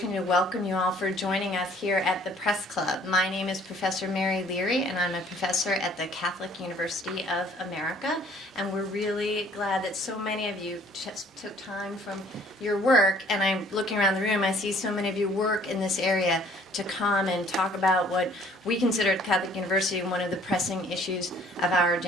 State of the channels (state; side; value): normal; both; correlation 0.56